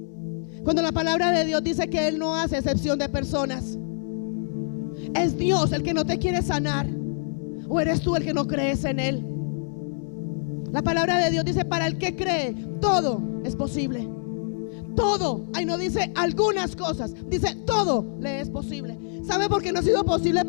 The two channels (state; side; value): silent; right; digital silence